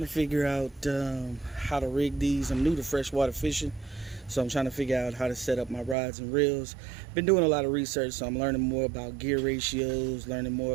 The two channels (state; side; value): drops out; left; at 6.0 s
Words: to figure out how to rig these. I'm new to freshwater fishing, so I'm trying to figure out how to set up my rods and reels. Been doing a lot of research, so I'm learning more about gear ratios, learning more